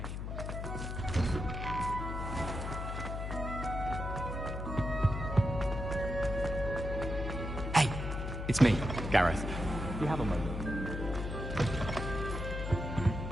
Hey, it's me, Gareth. Do you have a moment?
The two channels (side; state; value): left; noise; hum, 4 dB below the sound